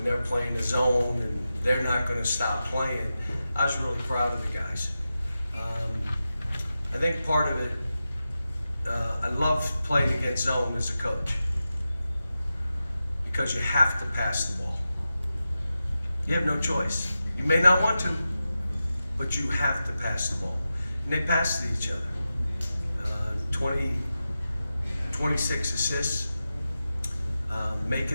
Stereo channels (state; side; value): inverted; both; correlation -0.92